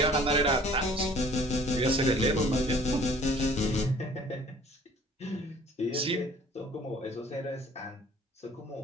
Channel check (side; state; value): both; normal; correlation 0.53